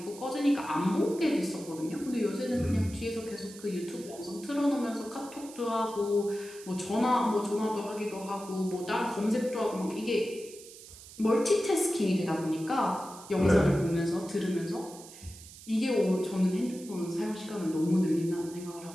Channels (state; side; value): noise; right; hiss, 17 dB below the sound